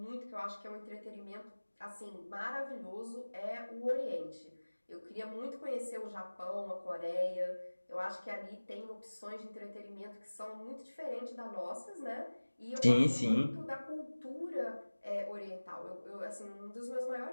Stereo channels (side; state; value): both; inverted; correlation -1.00